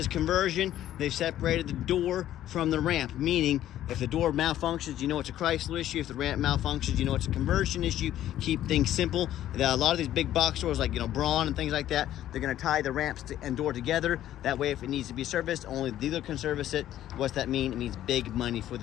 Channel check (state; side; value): quieter; right; 12.5 dB